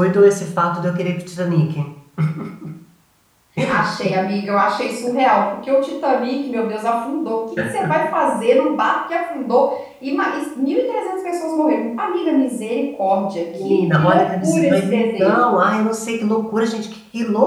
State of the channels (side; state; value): both; identical; correlation 1.00